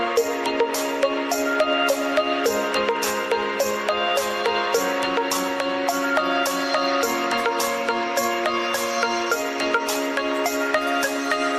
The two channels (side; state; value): both; identical; correlation 1.00